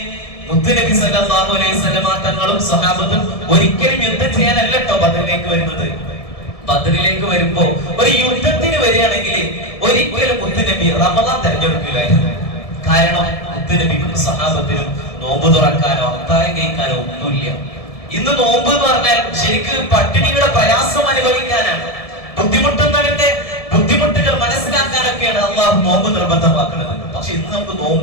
മുത്തുനബി സല്ലല്ലാഹു അലൈഹി വസല്ലമ തങ്ങളും സ്വഹാബത്തും ഒരിക്കലും യുദ്ധം ചെയ്യാനല്ല കേട്ടോ ബദറിലേക്ക് വരുന്നത്. ബദറിലേക്ക് വരുമ്പോ ഒരു യുദ്ധത്തിന് വരികയാണെങ്കിൽ ഒരിക്കലും മുത്തുനബി റമദാൻ തെരഞ്ഞെടുക്കില്ലായിരുന്നു. കാരണം മുത്തുനബിക്കും സ്വഹാബത്തിനും നോമ്പ് തുറക്കാനോ അത്താഴം കഴിക്കാനോ ഒന്നുമില്ല. ഇന്ന് നോമ്പ് എന്ന് പറഞ്ഞാൽ ശരിക്ക് പട്ടിണിയുടെ പ്രയാസം അനുഭവിക്കാനാണ്. ബുദ്ധിമുട്ടുന്നവന്റെ ബുദ്ധിമുട്ടുകൾ മനസ്സിലാക്കാനൊക്കെയാണ് അള്ളാഹു നോമ്പ് നിർബന്ധമാക്കുന്നത്. പക്ഷെ ഇന്ന് നമുക്ക്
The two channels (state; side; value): late; right; 1.7 ms